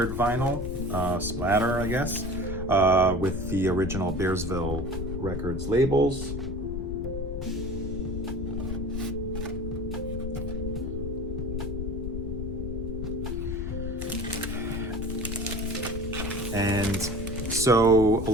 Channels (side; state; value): left; noise; rumble, 5 dB below the sound